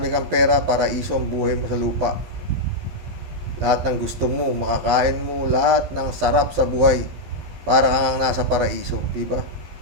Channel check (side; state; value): left; late; 12 ms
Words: kang pera, paraiso ang buhay mo sa lupa. Lahat ng gusto mo, makakain mo, lahat ng sarap sa buhay. Para kang nasa paraiso, diba?